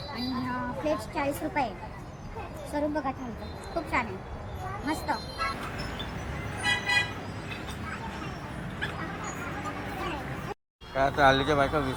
आणि प्लेट 40 रुपये. स्वरूप बघा थालीचं खूप छान आहे, मस्त. काय आता हल्लीच्या बायका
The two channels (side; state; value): both; identical; correlation 1.00